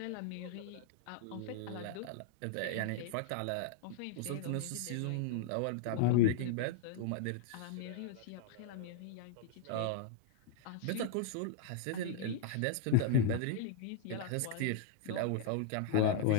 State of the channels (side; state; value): both; different; correlation -0.01